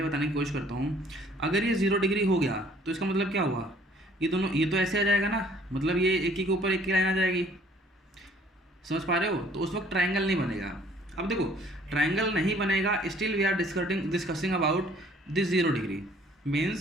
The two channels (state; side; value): normal; both; correlation 0.57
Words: बताने की कोशिश करता हूँ, अगर ये 0 डिग्री हो गया तो इसका मतलब क्या हुआ, ये दोनों ये तो ऐसे आ जाएगा ना, मतलब ये एक ही के ऊपर एक की लाइन आ जाएगी। समझ पा रहे हो? तो उस वक्त ट्रायंगल नहीं बनेगा। अब देखो ट्रायंगल नहीं बनेगा, still we are discussing about this 0 degree.